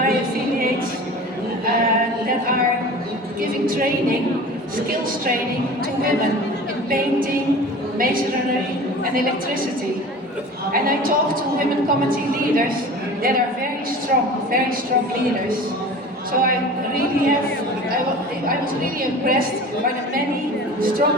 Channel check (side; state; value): both; normal; correlation 0.38